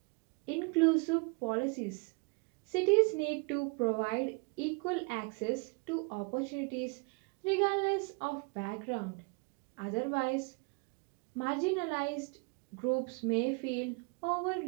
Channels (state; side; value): quieter; left; 31.6 dB